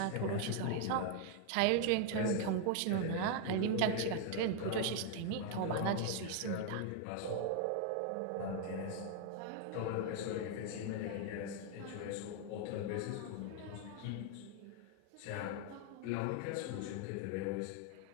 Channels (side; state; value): both; different; correlation 0.00